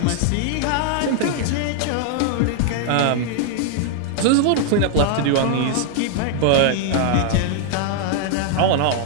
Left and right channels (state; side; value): different; both; correlation 0.00